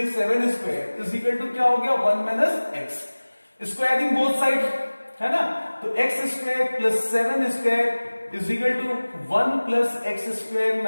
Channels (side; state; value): both; inverted; correlation -1.00